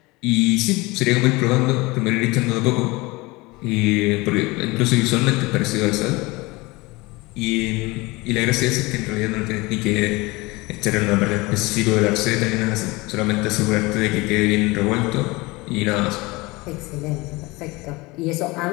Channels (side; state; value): right; quieter; 23.1 dB